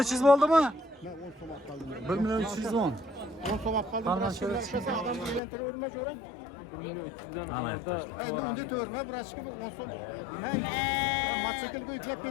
300 bo'ldimi? Men 10 so'm olib qoldim. 1 milyon 310. 10 so'm olib qoldim. Birasiga o'shasan, odamni uylantirverma jo'ram. Ana yurttaşlar. Endi unda to'rma birasiga 10 so'm. Men mototsiklga yuklab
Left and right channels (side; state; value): right; drops out; at 5.4 s